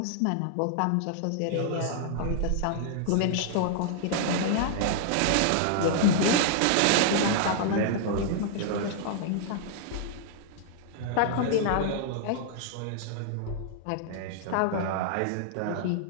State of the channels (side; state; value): both; different; correlation -0.01